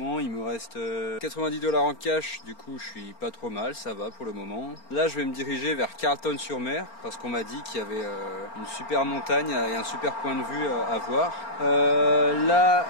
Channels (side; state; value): right; late; 4.4 ms